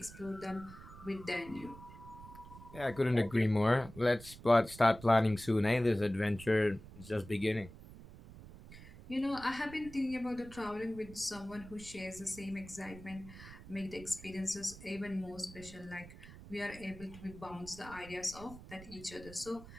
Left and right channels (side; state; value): right; noise; rumble, 16 dB below the sound